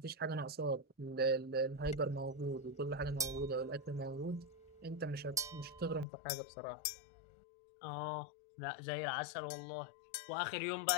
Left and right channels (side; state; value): right; drops out; at 6.1 s